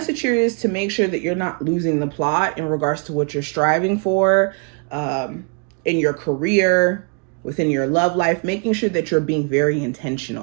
here is to make sure that you're not losing the plot in regards to what you're striving for in your career, within your love life, making sure that you're being very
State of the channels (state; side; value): quieter; left; 37.1 dB